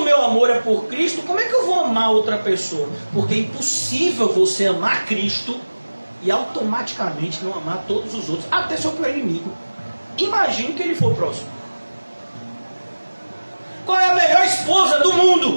meu amor é por Cristo, como é que eu vou amar outra pessoa? Porque é impossível você amar Cristo e automaticamente não amar todos os outros, até seu pior inimigo. Imagine que ele for próximo. Qual é a melhor esposa do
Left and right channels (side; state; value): both; inverted; correlation -1.00